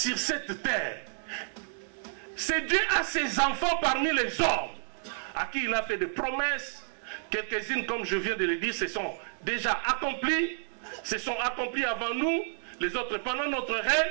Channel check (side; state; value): left; silent; digital silence